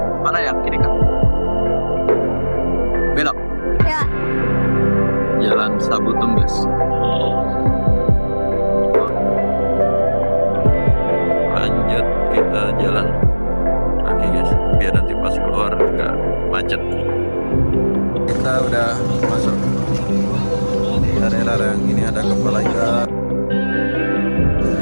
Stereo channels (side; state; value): both; inverted; correlation -1.00